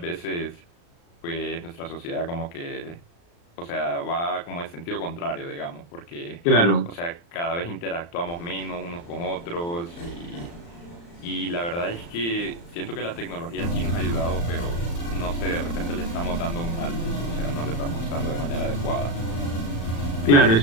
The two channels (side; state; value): right; late; 35 ms